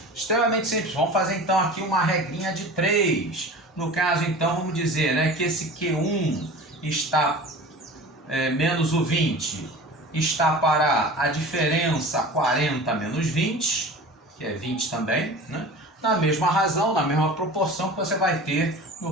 extremamente simples. Vamos fazer, então, aqui uma regrinha de 3. No caso, então, vamos dizer, né, que esse Q1 está menos o 20, está para a diferença 40 menos 20, que é 20 também, né? Na mesma razão, na mesma proporção que você vai ter,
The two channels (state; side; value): normal; both; correlation 0.37